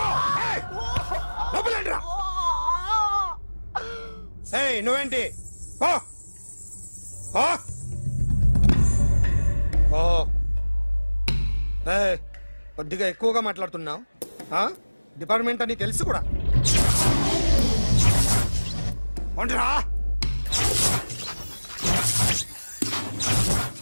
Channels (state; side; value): inverted; both; correlation -1.00